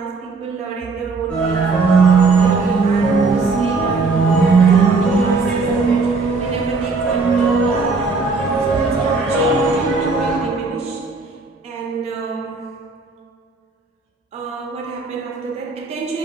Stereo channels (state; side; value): quieter; left; 4.1 dB